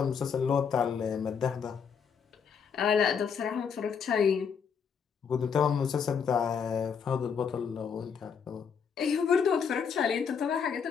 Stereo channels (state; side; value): quieter; right; 6.7 dB